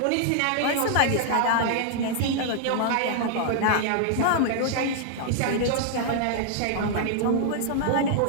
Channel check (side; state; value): both; different; correlation -0.01